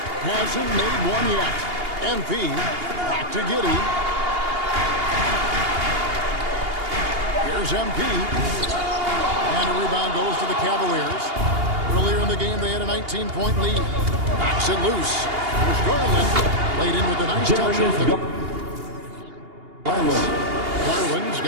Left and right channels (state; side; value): late; left; 2.8 ms